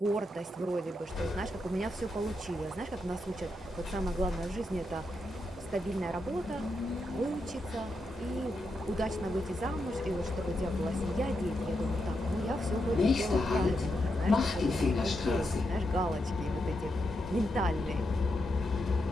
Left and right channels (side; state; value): both; normal; correlation 0.84